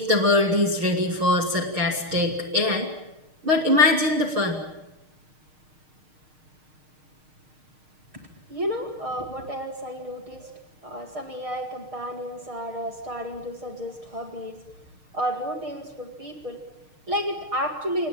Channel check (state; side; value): late; left; 6.5 ms